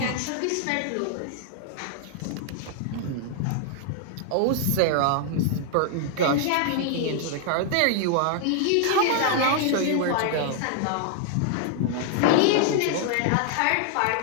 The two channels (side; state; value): both; different; correlation 0.00